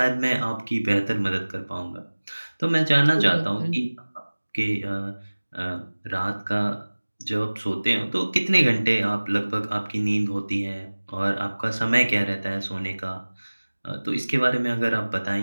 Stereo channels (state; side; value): inverted; both; correlation -1.00